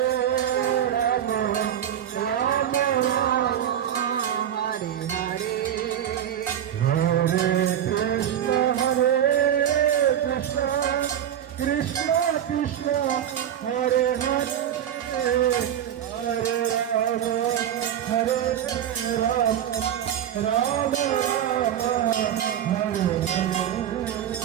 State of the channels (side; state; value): left; quieter; 10.1 dB